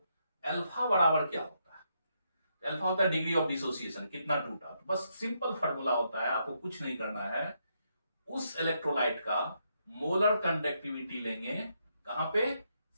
अल्फा बराबर क्या होता है, अल्फा होता है डिग्री ऑफ डिसोसिएशन, कितना टूटा। तो बस सिंपल फॉर्मूला होता है, आपको कुछ नहीं करना है, उस इलेक्ट्रोलाइट का मोलर कंडक्टिविटी लेंगे कहां पे,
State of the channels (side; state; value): both; inverted; correlation -0.78